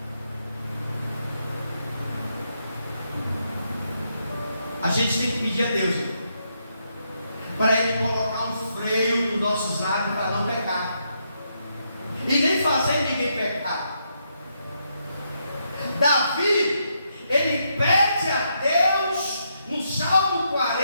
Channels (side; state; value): both; inverted; correlation -0.79